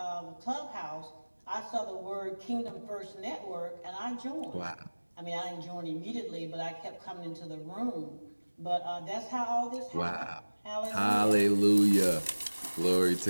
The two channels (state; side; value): inverted; both; correlation -1.00